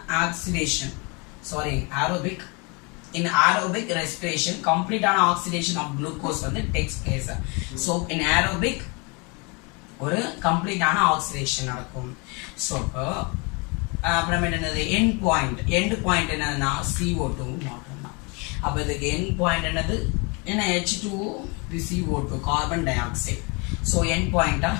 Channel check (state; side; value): quieter; right; 30.4 dB